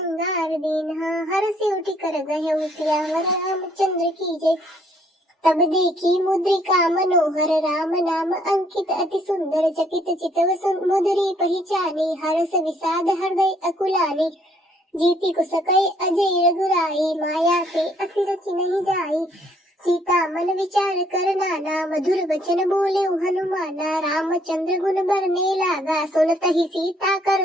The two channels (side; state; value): both; normal; correlation 0.66